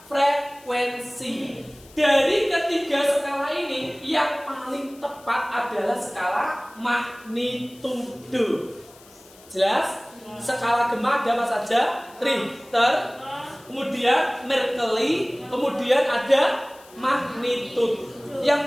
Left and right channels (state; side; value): noise; left; hiss, 24 dB below the sound